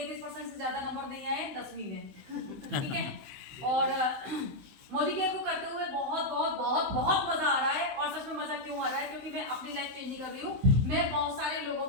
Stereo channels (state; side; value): late; left; 15 ms